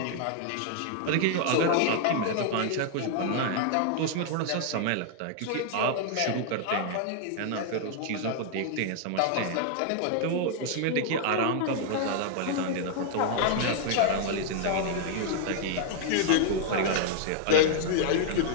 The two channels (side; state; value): both; different; correlation -0.01